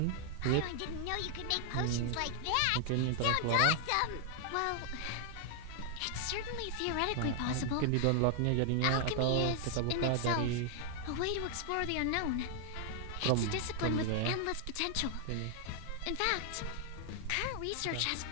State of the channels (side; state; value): both; different; correlation 0.00